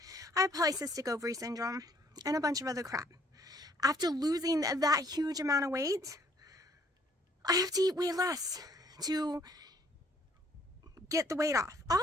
I had polycystic ovary syndrome and a bunch of other crap. After losing that huge amount of weight, I have to eat way less to get the weight off.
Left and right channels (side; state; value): both; normal; correlation 0.63